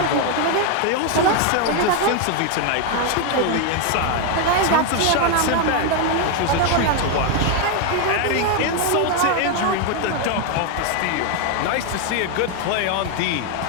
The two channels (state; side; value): different; both; correlation 0.01